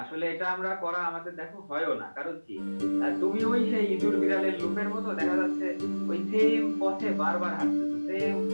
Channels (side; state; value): both; inverted; correlation -1.00